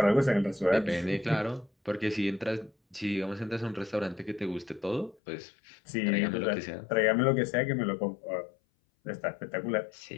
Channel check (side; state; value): right; drops out; at 5.2 s